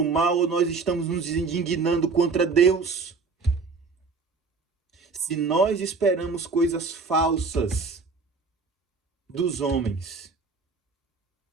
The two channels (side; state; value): left; quieter; 4.5 dB